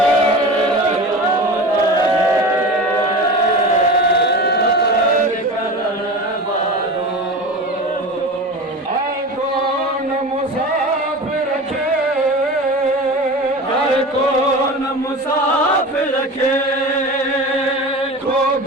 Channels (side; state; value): both; normal; correlation 0.31